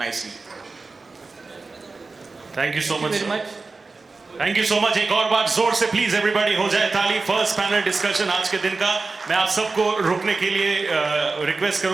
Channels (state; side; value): quieter; left; 3.9 dB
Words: Thank you so much. Very sir. much. Thank you so much. एक और बार जोर से please everybody हो जाए ताली। फर्स्ट पैनल डिस्कशन आज के दिन का। मैं आप सबको रुकने के लिए रिक्वेस्ट